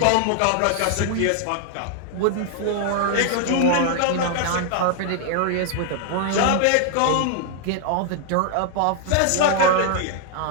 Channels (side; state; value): both; different; correlation 0.00